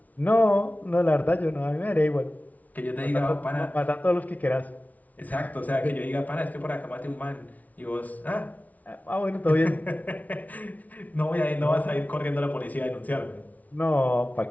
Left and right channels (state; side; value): late; right; 0.073 ms